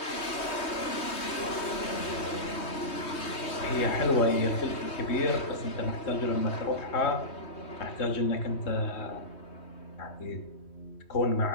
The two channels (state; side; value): late; right; 3.2 ms